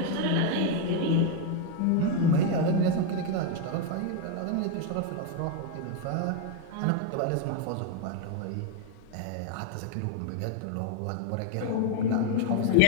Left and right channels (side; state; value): both; different; correlation 0.01